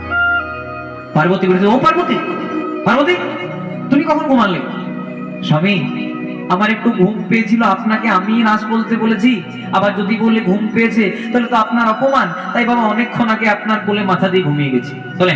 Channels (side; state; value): both; identical; correlation 1.00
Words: পার্বতী বলেছে, ও পার্বতী, পার্বতী তুমি কখন ঘুমালে? স্বামী, আমার একটু ঘুম পেয়েছিল, আপনাকে আমি রাস বলতে বলেছি, আবার যদি বলে ঘুম পেয়েছে তাহলে তো আপনার অপমান, তাই বাবা অনেকক্ষণ আগে আপনার কোলে মাথা দিয়ে ঘুমিয়ে গেছি। তাহলে